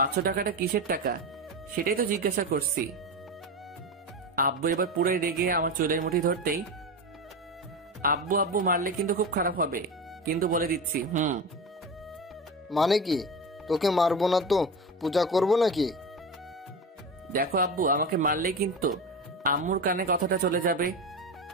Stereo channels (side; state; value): both; normal; correlation 0.23